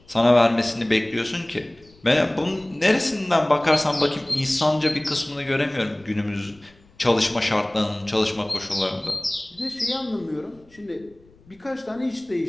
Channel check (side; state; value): left; noise; rumble, 28 dB below the sound